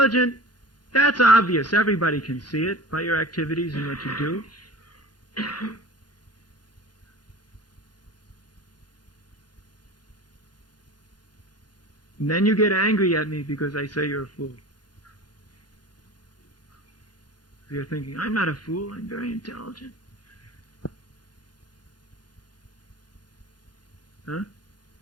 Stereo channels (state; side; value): late; right; 0.70 ms